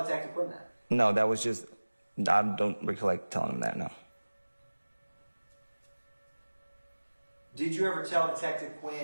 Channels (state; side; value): inverted; both; correlation -1.00